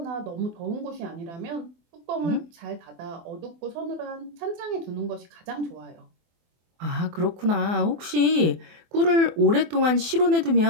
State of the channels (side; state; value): left; late; 24 ms